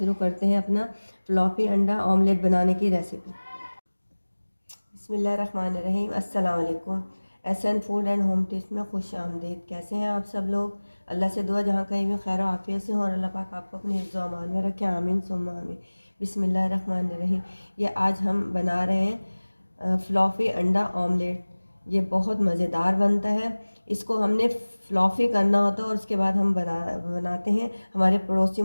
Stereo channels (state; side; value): inverted; both; correlation -1.00